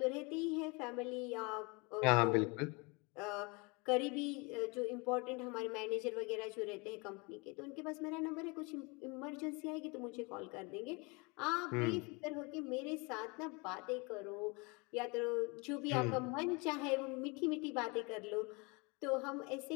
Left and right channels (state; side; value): quieter; right; 28.8 dB